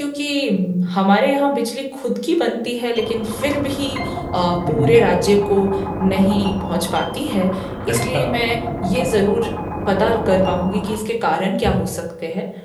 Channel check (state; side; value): identical; both; correlation 1.00